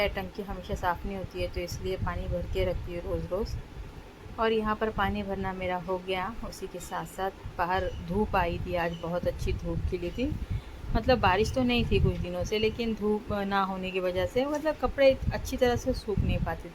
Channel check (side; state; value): both; identical; correlation 1.00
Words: टंकी हमेशा साफ़ नहीं होती है, तो इसलिए पानी भर के रखती हूँ रोज़ रोज़। और यहाँ पर पानी भरना मेरा हो गया। उसी के साथ साथ बाहर धूप आई थी, आज बहुत अच्छी धूप खिली थी। मतलब बारिश तो नहीं थी कुछ दिनों से, लेकिन धूप ना होने की वजह से मतलब कपड़े अच्छी तरह से सूख नहीं पाते